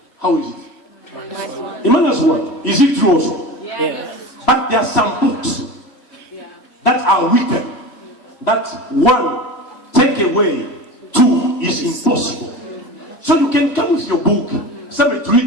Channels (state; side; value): late; right; 3.1 ms